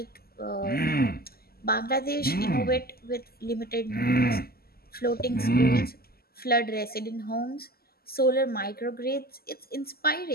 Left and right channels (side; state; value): right; late; 0.45 ms